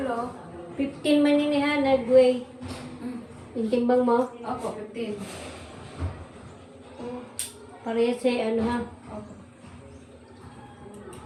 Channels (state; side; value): identical; both; correlation 1.00